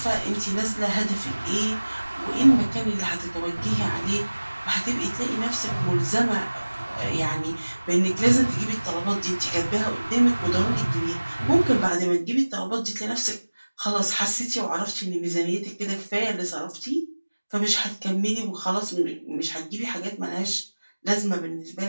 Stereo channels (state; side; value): inverted; both; correlation -1.00